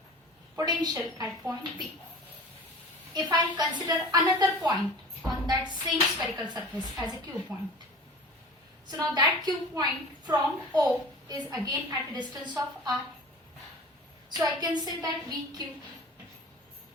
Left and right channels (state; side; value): normal; both; correlation 0.39